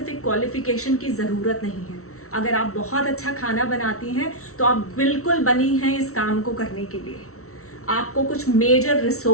क्वालिफिकेशन की ज़रूरत नहीं है. अगर आप बहुत अच्छा खाना बनाती हैं तो आप बिल्कुल बनी हैं इस काम को करने के लिए. आपको कुछ मेजर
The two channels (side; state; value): right; late; 0.63 ms